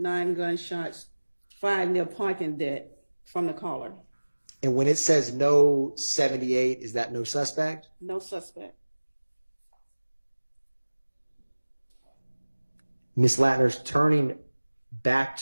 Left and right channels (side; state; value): both; inverted; correlation -1.00